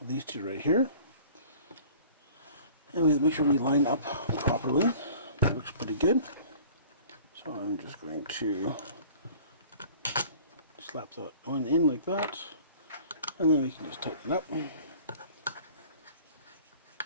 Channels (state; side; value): inverted; both; correlation -0.48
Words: these two right here. And we make sure we line up properly. It looks pretty good. So I'm just going to slap that one in like that, and then we can just tighten it up.